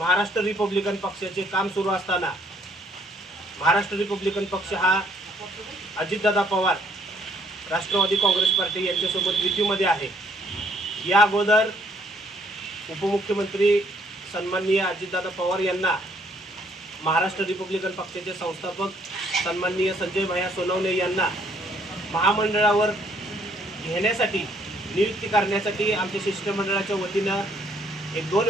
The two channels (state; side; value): normal; both; correlation 0.66